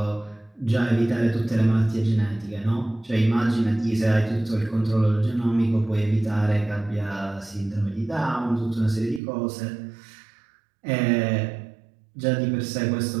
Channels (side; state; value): left; drops out; at 9.2 s